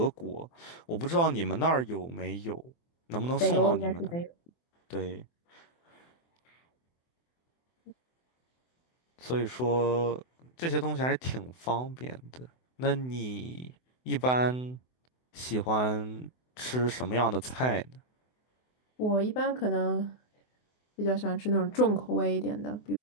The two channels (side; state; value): right; late; 24 ms